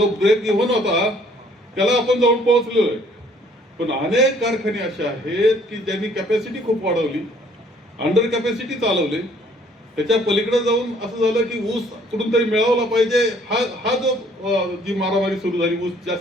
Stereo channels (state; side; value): normal; both; correlation 0.60